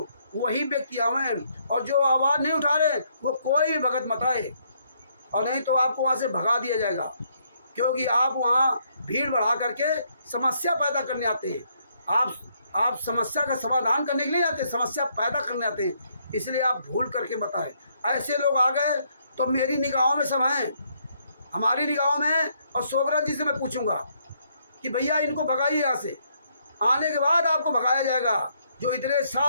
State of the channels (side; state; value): both; inverted; correlation -0.71